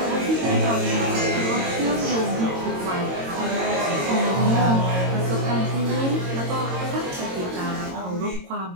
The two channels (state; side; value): late; left; 22 ms